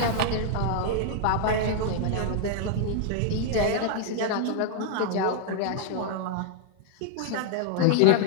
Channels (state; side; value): different; both; correlation 0.00